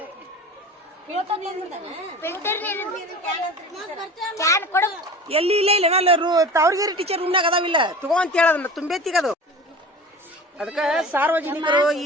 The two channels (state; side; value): normal; both; correlation 0.36